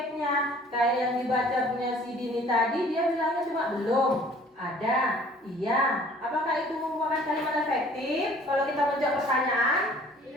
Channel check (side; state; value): both; normal; correlation 0.53